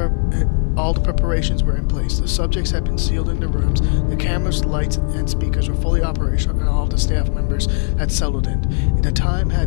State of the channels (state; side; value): silent; right; 64 dB below the other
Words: preparations were in place. The subjects had been sealed in the rooms, the cameras, lights, and speakers were fully operational, and all of the staff members had settled in. The time